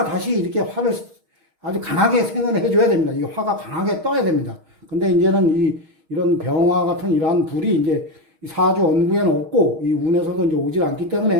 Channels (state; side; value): late; left; 6.4 ms